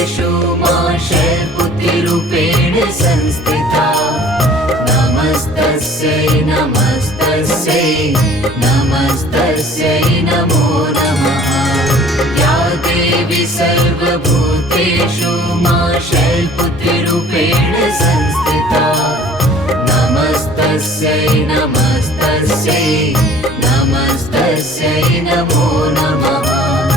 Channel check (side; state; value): both; normal; correlation 0.50